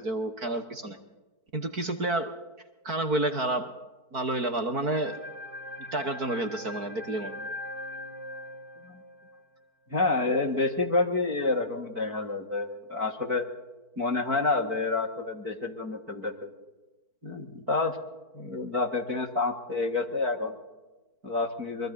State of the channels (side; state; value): left; late; 4.5 ms